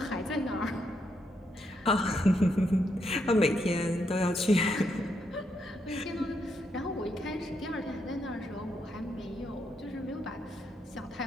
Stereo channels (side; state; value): both; normal; correlation 0.78